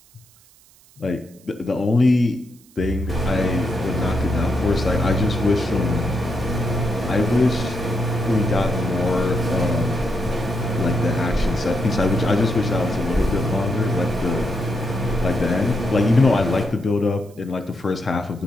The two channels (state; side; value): noise; right; hiss, 28 dB below the sound